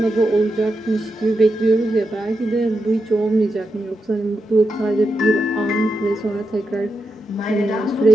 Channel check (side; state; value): both; normal; correlation 0.86